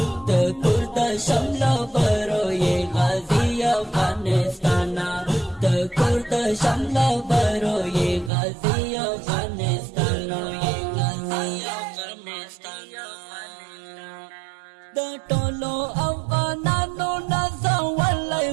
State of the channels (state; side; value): drops out; left; at 8.3 s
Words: د کور د شمل برو یې غازی افغانستان د کور د شمل برو یې غازی افغانستان د ټولو افغانانو نازولای